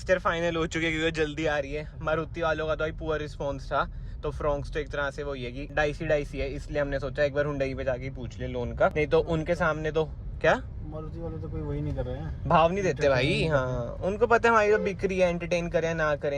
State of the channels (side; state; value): both; identical; correlation 1.00